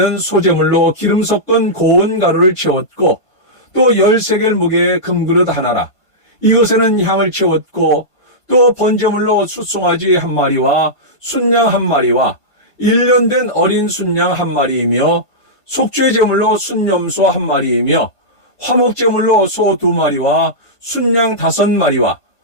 소재물로 기름 섞은 고운 가루를 채웠고 또 10세겔 무게의 금그릇 하나라. 이것에는 향을 채웠고 또 번제물로 숫송아지 한 마리와 순양 한 마리와 1년 된 어린 순양 한 마리이며 속죄 제물로 순염소 한 마리이며 화목 제물로 소 2마리와 순양 5마리와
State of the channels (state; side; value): late; right; 1.5 ms